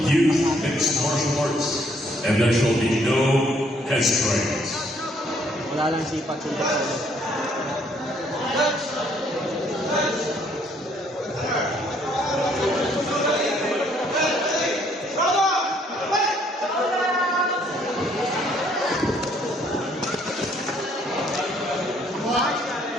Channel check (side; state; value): both; normal; correlation 0.65